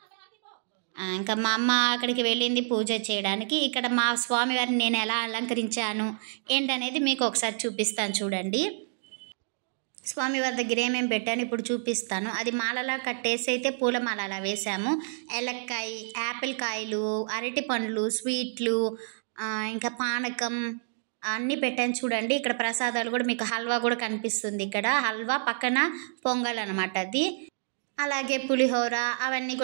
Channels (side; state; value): left; silent; digital silence